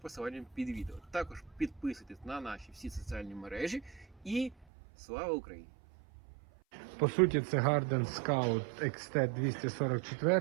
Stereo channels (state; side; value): drops out; left; at 4.7 s